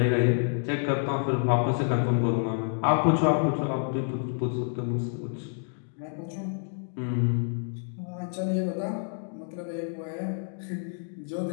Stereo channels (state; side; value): silent; right; digital silence